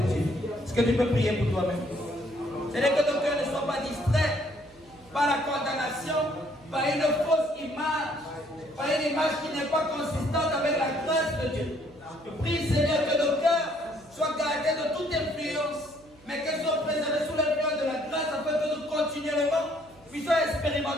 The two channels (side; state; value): right; noise; hum, 27 dB below the sound